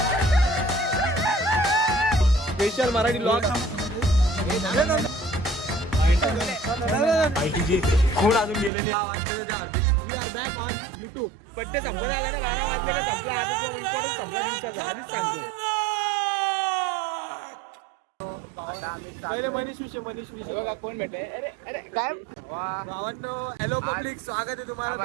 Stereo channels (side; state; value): left; drops out; at 8.7 s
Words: स्पेशल मराठी ब्लॉग आयटीची खूण अजून गेलेली बॅक ऑन युट्यूब. बड्डे संपला आला ना, 12 वाजलेला संपला. आता तो इम्पॉर्टंट संपला दिवसाचा, आधीच सांगतो. पहिले मनीष विषय बघा कोण भेटले. अरे अरे काय भावांनो, हॅलो पब्लिक, स्वागत आहे तुम्हाला.